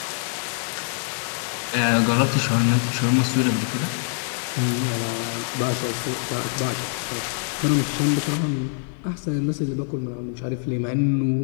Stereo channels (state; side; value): silent; right; digital silence